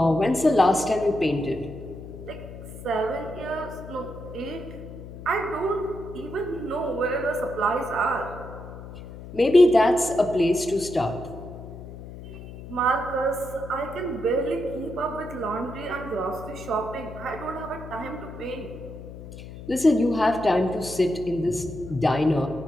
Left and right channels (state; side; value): noise; left; hum, 13 dB below the sound